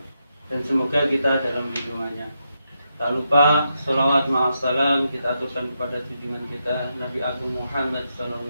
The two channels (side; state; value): both; inverted; correlation -0.84